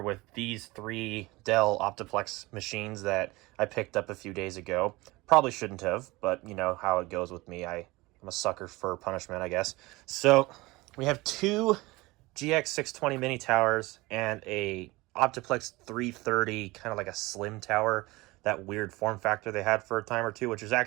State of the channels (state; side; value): quieter; left; 21.5 dB